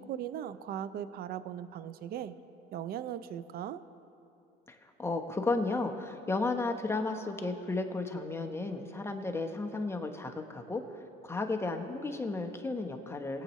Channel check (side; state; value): both; normal; correlation 0.68